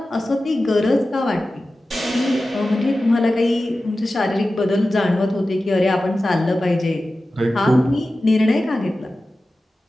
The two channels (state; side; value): normal; both; correlation 0.94